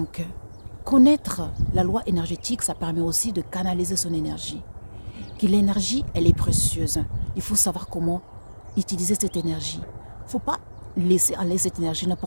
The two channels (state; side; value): inverted; both; correlation -1.00